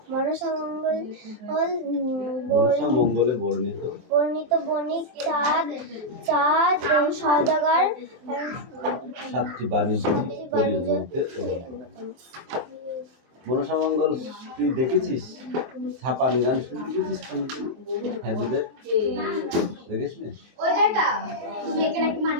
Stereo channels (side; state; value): left; late; 23 ms